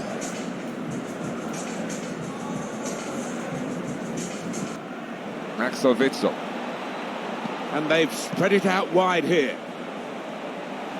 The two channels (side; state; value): both; identical; correlation 1.00